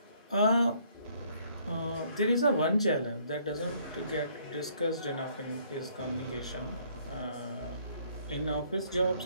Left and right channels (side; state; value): both; inverted; correlation -0.64